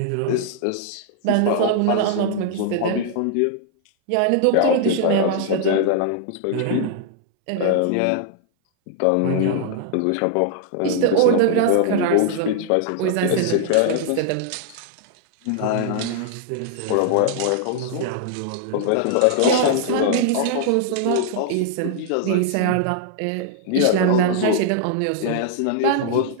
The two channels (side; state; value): both; different; correlation -0.01